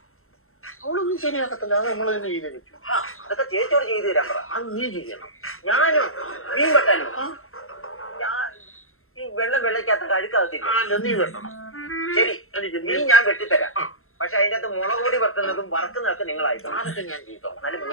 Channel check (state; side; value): late; right; 0.62 ms